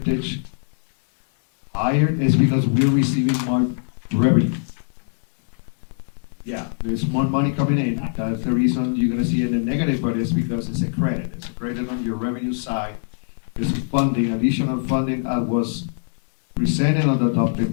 higher, is because we're receiving more revenue. Yeah, there's more money coming in. That's the reason you're gonna see it in the negative, but it's because it's a credit. It's a credit on your revenue side. This funding, additional funding, was presented on the adopted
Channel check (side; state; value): right; silent; 64 dB below the other